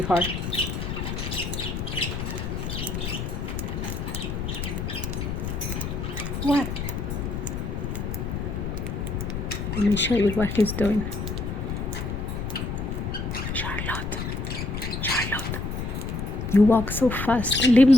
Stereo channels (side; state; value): left; noise; rumble, 4 dB below the sound